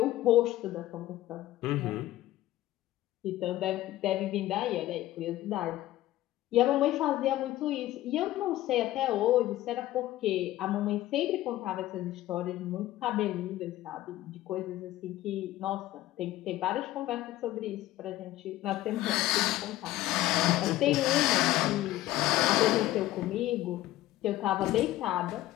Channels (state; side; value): quieter; right; 15.4 dB